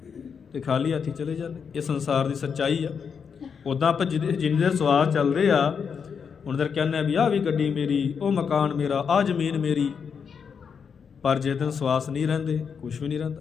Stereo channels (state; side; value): quieter; right; 6.5 dB